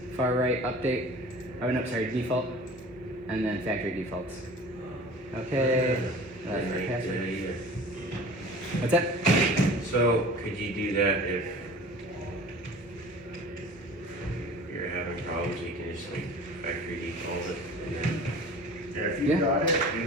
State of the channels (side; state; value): both; normal; correlation 0.42